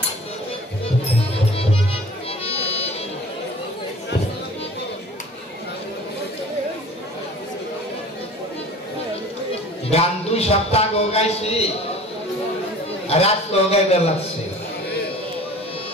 গান 2 সপ্তাহ আগে গাইছি আর আজকে গাইতে লাগছে,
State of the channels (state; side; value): normal; both; correlation 0.45